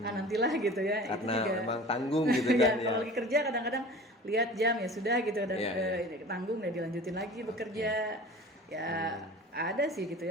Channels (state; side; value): normal; both; correlation 0.40